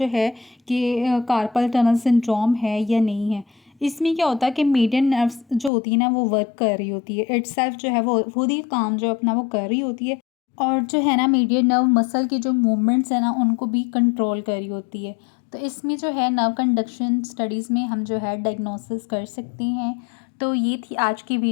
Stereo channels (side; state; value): right; drops out; at 5.7 s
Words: है कि कार्पल टनल सिंड्रोम है या नहीं है। इसमें क्या होता है कि मीडियन नर्व्स जो होती है ना वो वर्क कर रही होती है, इटसेल्फ जो है वो खुद ही काम जो अपना वो कर रही होती है, और जो है ना मीडियन नर्व मसल की जो मूवमेंट्स है ना उनको भी कंट्रोल कर रही होती है। तो इसमें जो है नर्व कंडक्शन स्टडीज़ में हम जो है डायग्नोसिस कर सकते हैं। तो ये थी आज की